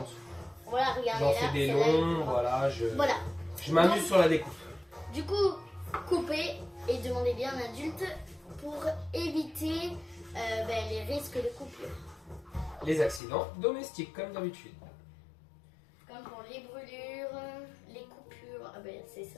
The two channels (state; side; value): drops out; right; at 13.2 s